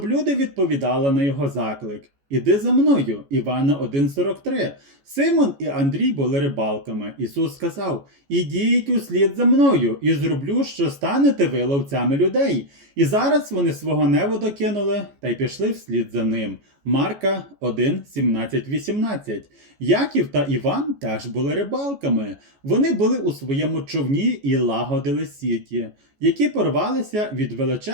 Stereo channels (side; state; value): left; late; 14 ms